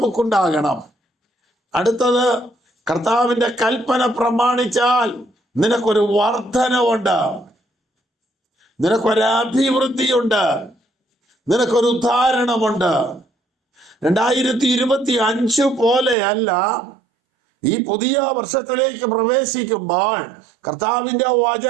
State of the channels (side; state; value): left; drops out; at 16.2 s